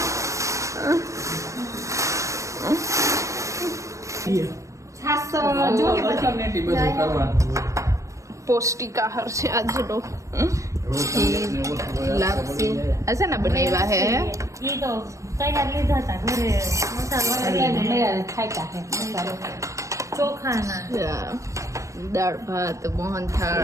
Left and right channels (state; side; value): late; left; 0.15 ms